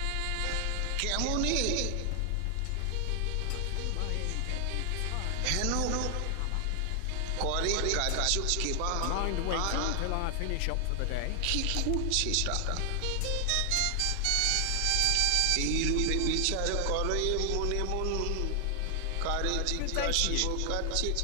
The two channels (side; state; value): both; different; correlation 0.00